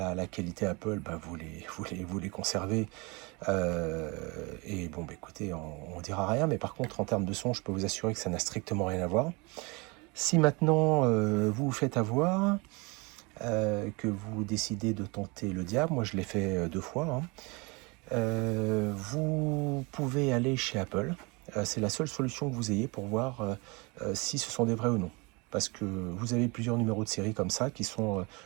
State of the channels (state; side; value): quieter; left; 27.9 dB